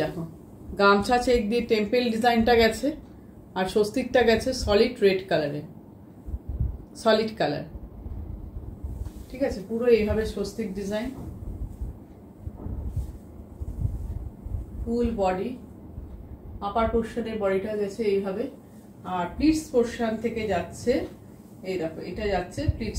দেখো গামছা চেক দিয়ে টেম্পেল ডিজাইনটা গেছে, আর স্বস্তিকটা গেছে সলিড রেড কালারে, সলিড কালার, ঠিক আছে। পুরো এইভাবে স্বস্তিক ডিজাইন, ফুল বডি, আপার পোর্শনের বডিটা গেছে এইভাবে, আর প্লিটস পোর্শন থেকে যাচ্ছে, এই দেখো এটা যাচ্ছে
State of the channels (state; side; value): identical; both; correlation 1.00